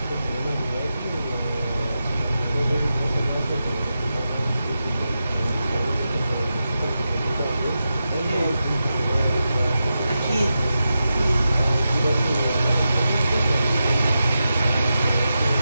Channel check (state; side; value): inverted; both; correlation -0.89